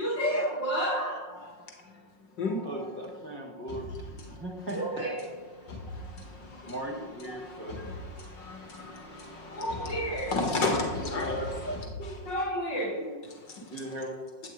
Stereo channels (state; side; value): late; right; 5.5 ms